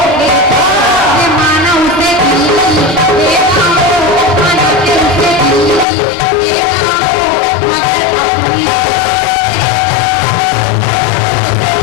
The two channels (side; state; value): right; drops out; at 5.9 s